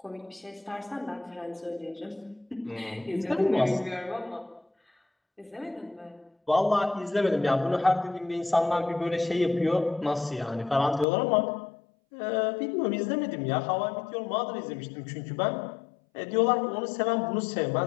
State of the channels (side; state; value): right; drops out; at 11.1 s